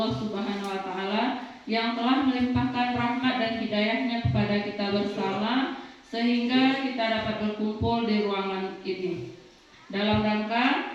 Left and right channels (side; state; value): both; identical; correlation 1.00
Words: Subhanahu wa Ta'ala yang telah melimpahkan rahmat dan hidayahnya kepada kita bersama sehingga kita dapat berkumpul di ruangan ini dalam